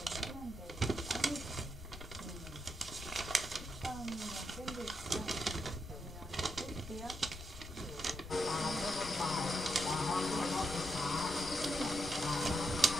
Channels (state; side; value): noise; left; rumble, 13 dB below the sound